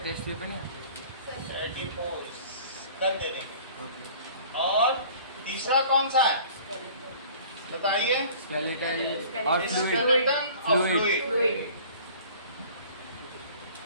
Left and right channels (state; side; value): inverted; both; correlation -0.48